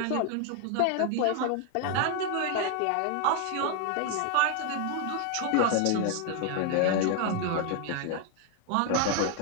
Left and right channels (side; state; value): both; different; correlation 0.00